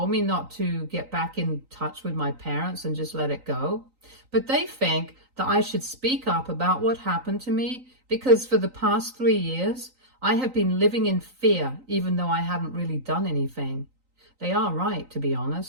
me not to get back in touch with my parents and just let it go. But they think that I should speak up about what happened to me because for the past 3 years, I have been living in fear even though I haven't really done anything. They are right, to be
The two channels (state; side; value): late; left; 3.9 ms